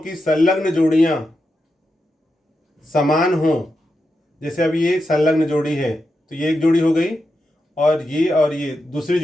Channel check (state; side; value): normal; both; correlation 0.87